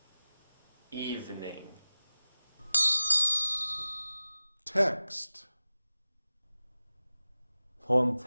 Evening. Text. Poem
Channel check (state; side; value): inverted; both; correlation -0.98